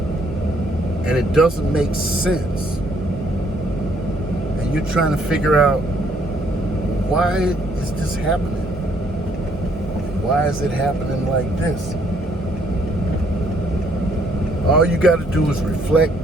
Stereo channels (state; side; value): normal; both; correlation 0.67